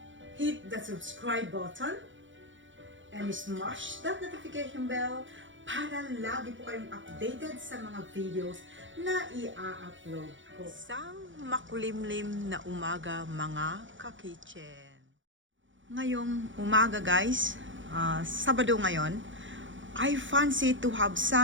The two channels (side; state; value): left; late; 0.56 ms